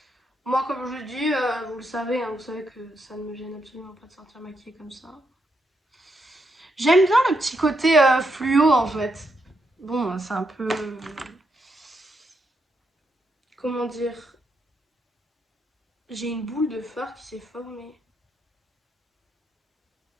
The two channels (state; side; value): normal; both; correlation 0.80